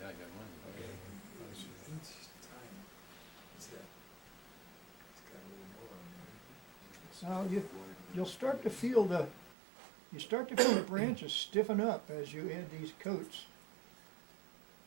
I got one. Now you'll start to feel the branches stiffen up as you add these coats.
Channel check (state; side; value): drops out; left; at 9.6 s